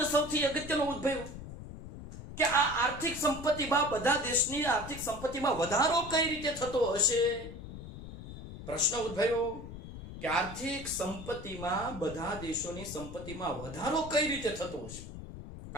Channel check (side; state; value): left; noise; rumble, 12 dB below the sound